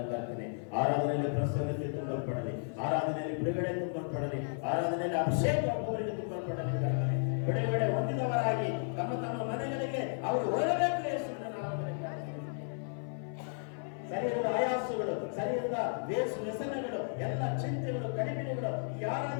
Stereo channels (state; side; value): silent; right; 55 dB below the other